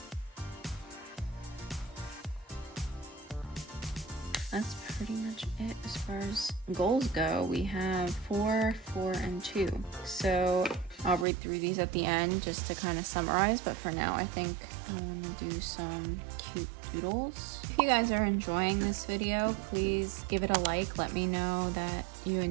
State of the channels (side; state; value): left; drops out; at 11.2 s